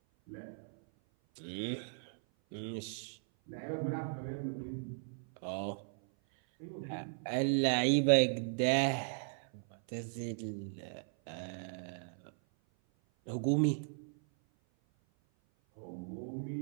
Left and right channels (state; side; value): silent; left; 53 dB below the other